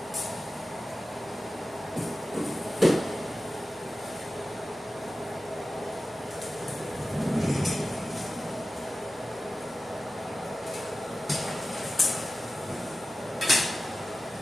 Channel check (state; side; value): normal; both; correlation 0.95